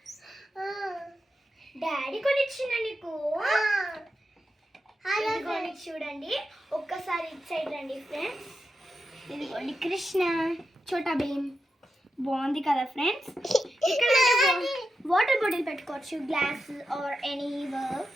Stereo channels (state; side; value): normal; both; correlation 0.88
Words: డాడీ కొనిచ్చిందా నీకు? ఇదిగోండి చూడండి, ఒక్కసారి ఇటు సైడ్ రండి ఫ్రెండ్స్. ఇదిగోండి కృష్ణ చోటా భీమ్, బాగుంది కదా ఫ్రెండ్స్. ఇక్కడ వాటర్ బాటిల్ పెట్టుకోవచ్చు, గ్లాస్ ఆర్ ఎనీ